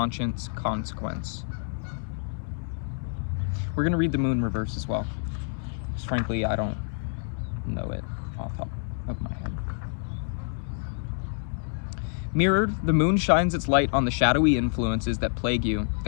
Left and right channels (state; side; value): silent; right; digital silence